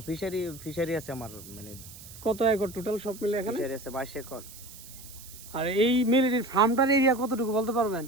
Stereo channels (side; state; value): right; noise; hiss, 17 dB below the sound